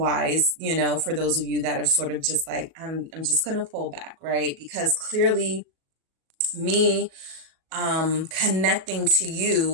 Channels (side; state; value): left; late; 37 ms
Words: you know, for those of you that have sort of just like, I'm just going to pull back, right? Because clearly me connecting to